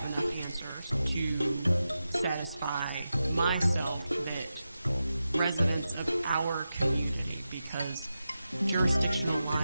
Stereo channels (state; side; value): inverted; both; correlation -0.91